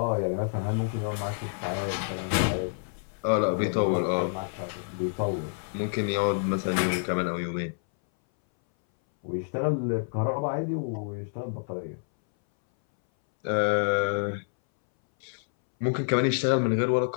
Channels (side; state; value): right; silent; 59 dB below the other